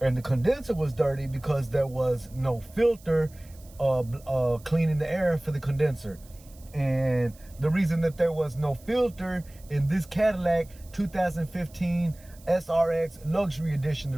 the condenser was dirty because there was no filter cleaning the air for the condenser. And the reason that there was no filter in this Cadillac 2015 SRX Luxury Edition, the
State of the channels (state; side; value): noise; right; hiss, 25 dB below the sound